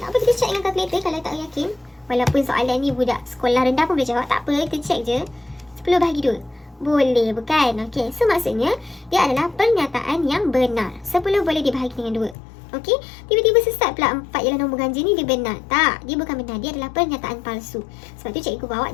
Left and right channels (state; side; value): drops out; right; at 12.4 s